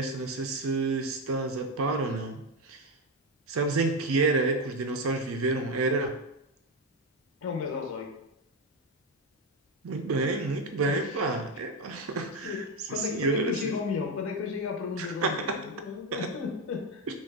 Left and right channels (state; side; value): normal; both; correlation 0.10